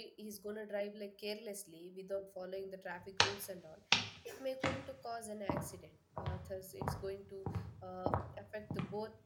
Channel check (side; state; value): both; identical; correlation 1.00